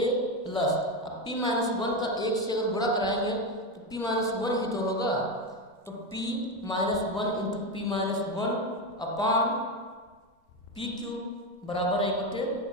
प्लस, अब p माइनस 1 का 1 से अगर गुणा कराएंगे तो p माइनस 1 ही तो होगा, तो p minus 1 into P minus 1 upon P Q बराबर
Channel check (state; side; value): normal; both; correlation 0.14